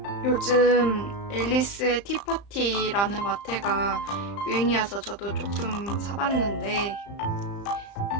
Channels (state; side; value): late; right; 35 ms